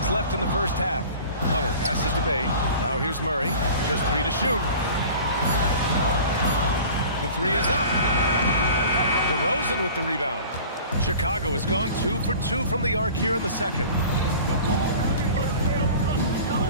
left in the first half. Hunter passes to Bay. Now here's Murray. Just 3 to shoot. The 3 is up. DeRozan with the rebound. Chicago has gone 2 for 2 from the arc here in the second.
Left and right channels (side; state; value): both; inverted; correlation -0.42